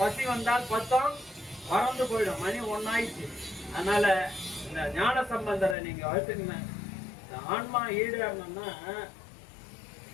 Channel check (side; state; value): right; drops out; at 5.8 s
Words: வந்தால் பத்தம் பறந்து போயிடும். மணி 1 ஆயிடுச்சு. அதனால இந்த ஞான சம்பந்தரை நீங்க வச்சுக்கங்க. இந்த ஆன்மா ஈடுறணும்னா